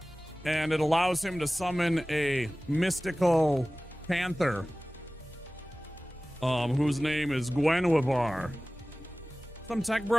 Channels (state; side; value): normal; both; correlation 0.97